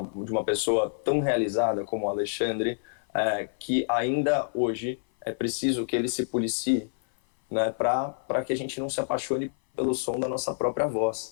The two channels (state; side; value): silent; right; 56 dB below the other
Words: pessoa tão realizada como o Alexandre, que ainda hoje é preciso que ele se policie, né, para que a gente não se apaixone pelo som da nossa própria